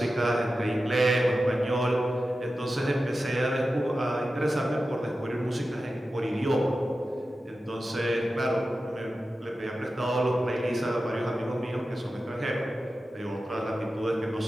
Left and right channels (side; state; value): both; normal; correlation 0.93